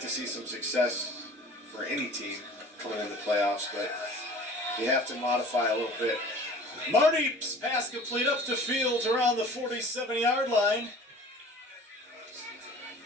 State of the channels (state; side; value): normal; both; correlation 0.45